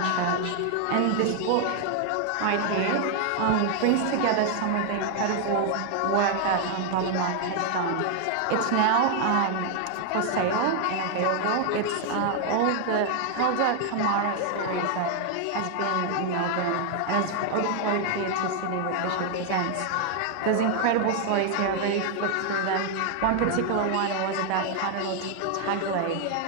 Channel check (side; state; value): both; different; correlation 0.00